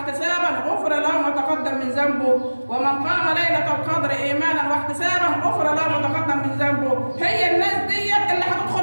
غفر له ما تقدم من ذنبه، ومن قام ليله القدر ايمانا واحتسابا غفر له ما تقدم من ذنبه. هي الناس ديت اللي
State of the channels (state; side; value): inverted; both; correlation -1.00